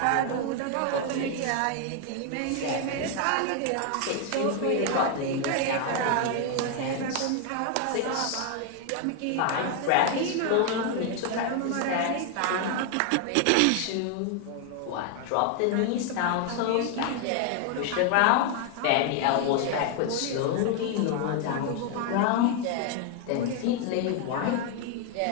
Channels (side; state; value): both; different; correlation 0.00